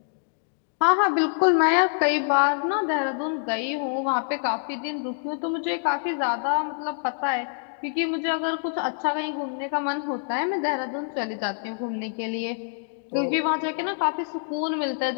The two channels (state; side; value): silent; right; digital silence